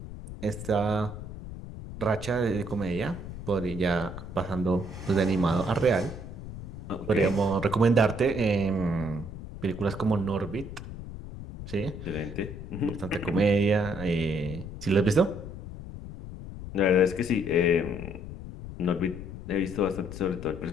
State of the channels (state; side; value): noise; left; rumble, 10 dB below the sound